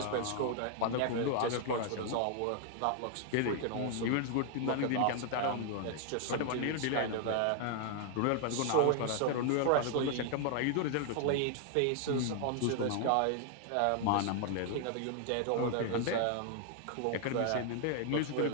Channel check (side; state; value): both; different; correlation 0.00